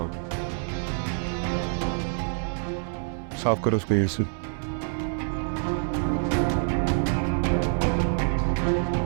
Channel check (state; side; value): silent; left; 60 dB below the other